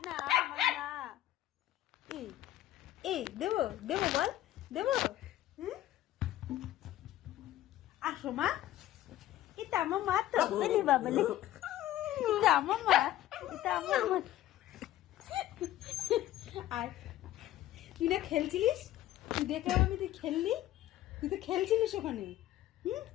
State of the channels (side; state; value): right; quieter; 13.8 dB